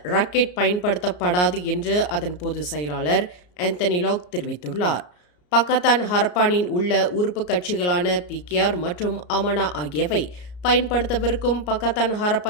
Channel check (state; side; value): late; right; 34 ms